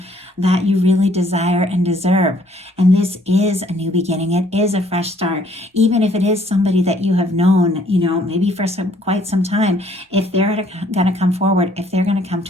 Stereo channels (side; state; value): both; normal; correlation 0.63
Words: that you really desire and deserve. And this is a new beginning. It is a fresh start. Even if it is somebody that you have known, maybe for quite some time, if they're going to come forward, if they're going to come